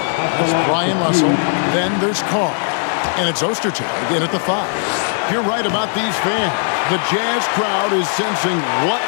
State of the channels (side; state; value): right; silent; digital silence